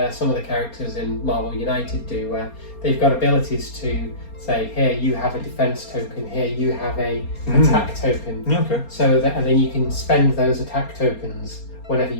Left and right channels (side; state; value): right; late; 4.3 ms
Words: of the characters in Marvel United do, where they've got abilities to say, here you have a defense token, here you have a attack token. Okay. So that, and then you can spend those attack tokens whenever